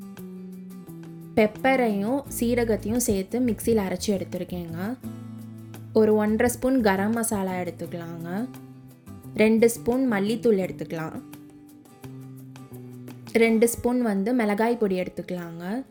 பெப்பரையும் சீரகத்தையும் சேர்த்து மிக்சியில் அரைச்சி எடுத்துருக்கேங்க. ஒரு 1.5 ஸ்பூன் கரம் மசாலா எடுத்துக்கலாங்க. 2 ஸ்பூன் மல்லித்தூள் எடுத்துக்கலாம். 2 ஸ்பூன் மிளகாய் பொடி எடுத்துக்கலாங்க.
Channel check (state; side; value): identical; both; correlation 1.00